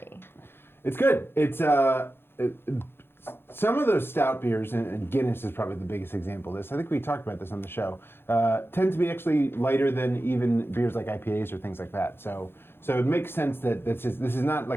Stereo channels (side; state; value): right; late; 0.11 ms